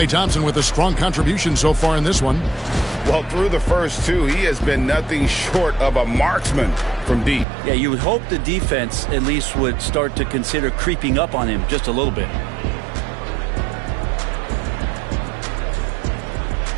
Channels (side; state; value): left; drops out; at 7.5 s